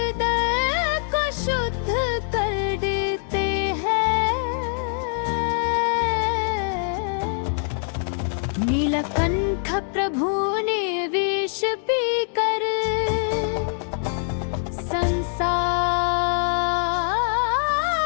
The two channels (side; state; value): right; silent; 63 dB below the other